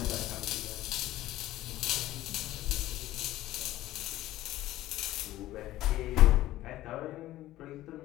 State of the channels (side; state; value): right; quieter; 15.3 dB